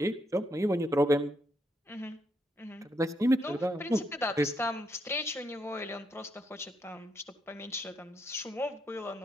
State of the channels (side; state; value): both; normal; correlation 0.78